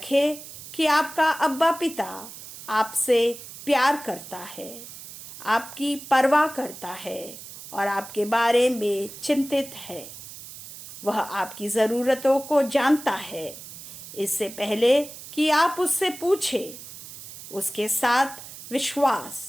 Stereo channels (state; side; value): noise; right; hiss, 14 dB below the sound